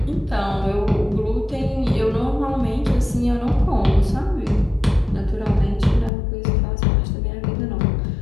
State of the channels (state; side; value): drops out; right; at 6.1 s